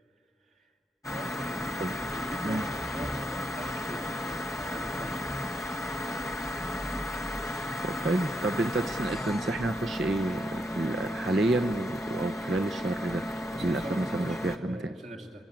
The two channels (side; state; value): both; normal; correlation 0.79